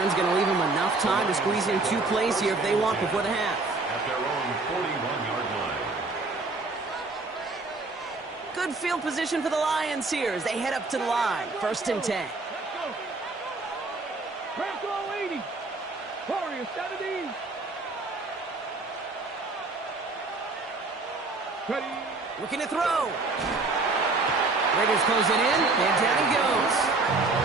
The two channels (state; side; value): quieter; left; 3.5 dB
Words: going to leave them enough time to squeeze in 2 plays here if they want before the half. At their own 41-yard line. Good field position for the Lions here as they head up to the line. 1st and 10. Press all 80. Warriors 70. Ready. Looking to throw. Raiders close it in, and down he goes.